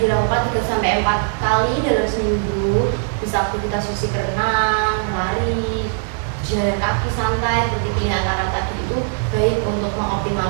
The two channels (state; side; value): silent; left; digital silence